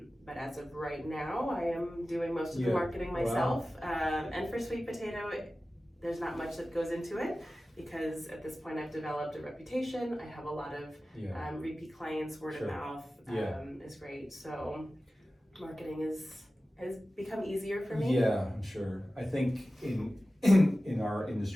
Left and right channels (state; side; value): normal; both; correlation 0.95